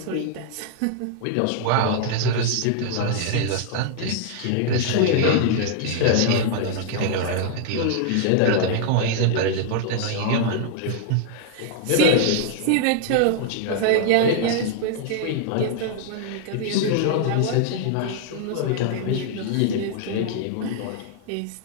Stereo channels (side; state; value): both; different; correlation -0.01